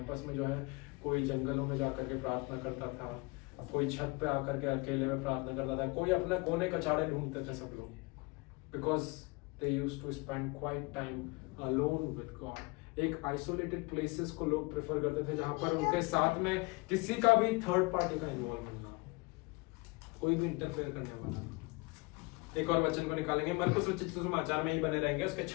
में जो है कोई जंगलों में जाकर के प्रार्थना करता था, कोई छत पे आकर के अकेले में प्रार्थना करता था, कोई अपने कोने कचाड़े ढूंढते थे सब लोग, because they used to spend quiet time alone with God. एक आइसोलेटेड प्लेसेस को लोग प्रेफर करते थे जहां पर उनके साथ में किसी का भी थर्ड पार्टी का इन्वॉल्वमेंट ना, कोई भी इंटरफेयर करने वाला ना। एक और वचन को निकालेंगे, मरकुस रचित सुसमाचार में ही बने रहेंगे, उसके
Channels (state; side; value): quieter; right; 26.4 dB